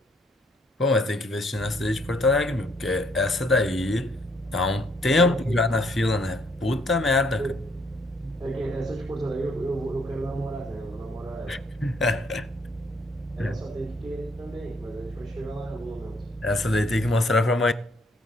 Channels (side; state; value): both; normal; correlation 0.67